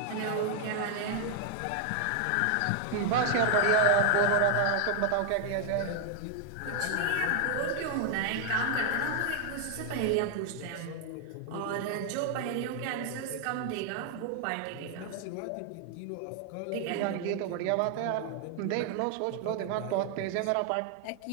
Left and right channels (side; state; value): both; different; correlation 0.00